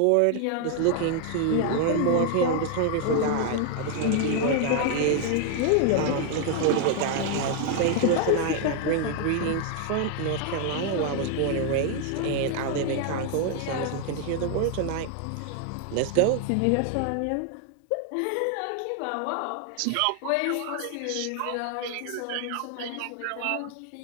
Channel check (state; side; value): different; both; correlation 0.00